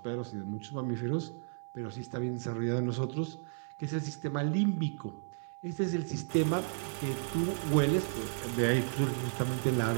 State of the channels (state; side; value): silent; left; 55 dB below the other